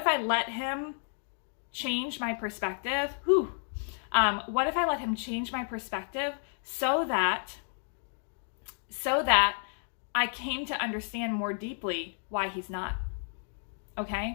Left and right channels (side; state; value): right; silent; 57 dB below the other